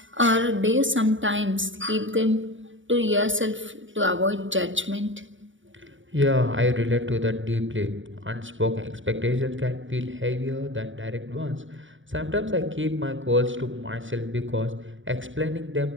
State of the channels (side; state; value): left; late; 0.56 ms